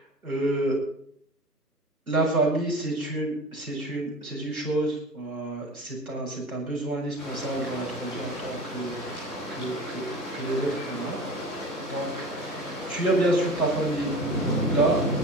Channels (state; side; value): normal; both; correlation 0.37